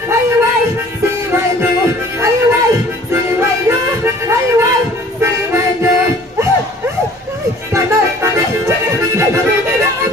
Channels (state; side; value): normal; both; correlation 0.51